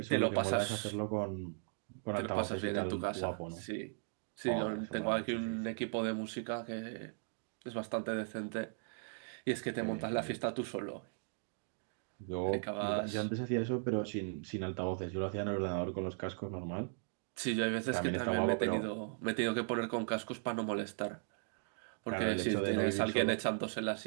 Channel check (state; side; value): silent; left; digital silence